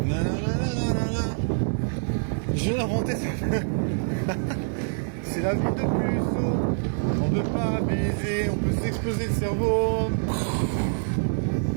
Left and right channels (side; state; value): left; silent; digital silence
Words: Nanana. Je vais l'inventer. C'est la vie de puceau. On peut pas baiser. On peut s'exploser le cerveau.